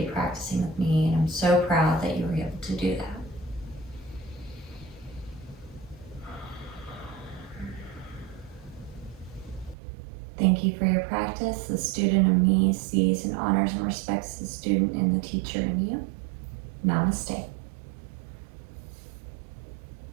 practicing with me, and I'm so proud that you were able to do that. Thank you for your practice. The student in me sees and honors and respects the student and the teacher in you. Namaste.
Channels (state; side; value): drops out; left; at 9.8 s